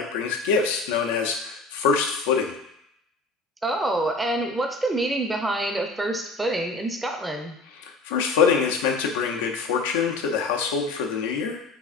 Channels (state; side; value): quieter; right; 3.2 dB